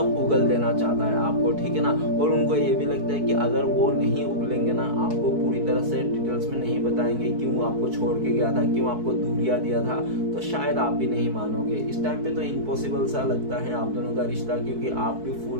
उगल देना चाहता है आपको, ठीक है ना। और उनको ये भी लगता है कि अगर वो नहीं उगलेंगे ना, आपको पूरी तरह से डिटेल्स में नहीं बताएंगे क्यों आपको छोड़ के गया था, क्यों आपको दूरिया दिया था, तो शायद आप भी नहीं मानोगे। इस टाइम पे तो इम्पॉसिबल सा लगता है आप दोनों का रिश्ता, क्योंकि आप भी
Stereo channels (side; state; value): left; late; 4.6 ms